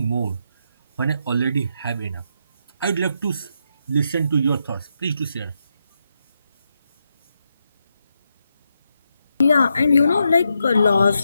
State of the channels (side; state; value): both; inverted; correlation -0.82